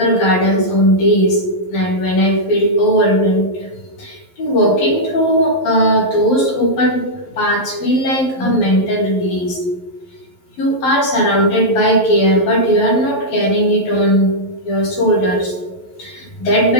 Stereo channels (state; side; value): late; right; 11 ms